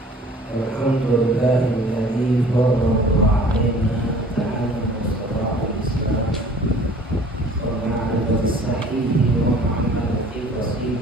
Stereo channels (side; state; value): both; normal; correlation 0.50